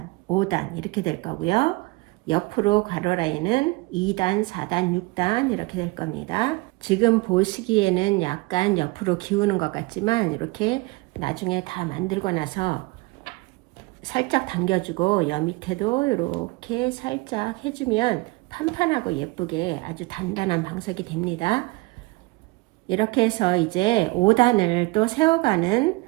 5단 이렇게 될 거고요. 옆으로 가로 라인은 2단, 4단, 6단 이렇게 될 겁니다. 지금 보시기에는 약간 옆으로 기우는 것 같지만, 이렇게 나중에 다 만들고 나서 살짝 당겨주고 여 밑에도 이렇게 살짝 해주면 판판하고 예쁘게 아주 단단한 방석이 됩니다. 이렇게 해서 이제 5단을 또 세워가는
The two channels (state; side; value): quieter; left; 23.6 dB